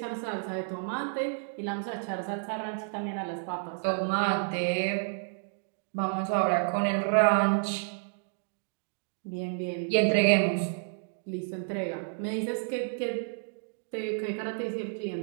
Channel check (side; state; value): left; silent; digital silence